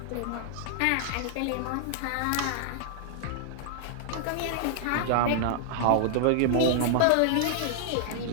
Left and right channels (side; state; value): both; different; correlation -0.01